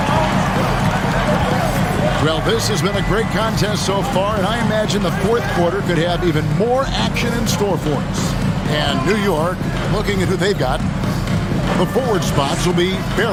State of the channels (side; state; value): both; identical; correlation 1.00